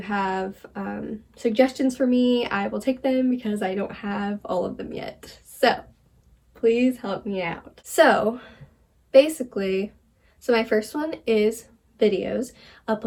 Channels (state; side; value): identical; both; correlation 1.00